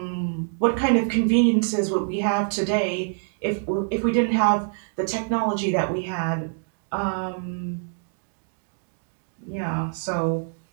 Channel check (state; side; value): silent; left; 58 dB below the other